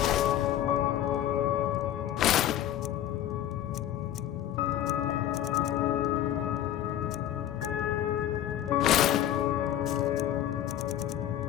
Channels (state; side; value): quieter; right; 11.8 dB